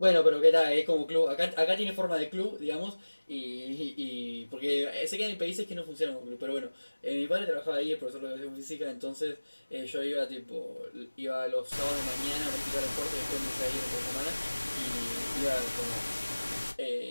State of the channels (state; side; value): inverted; both; correlation -1.00